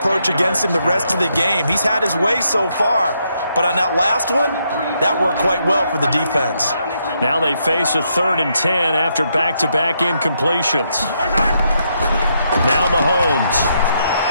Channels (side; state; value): both; inverted; correlation -0.77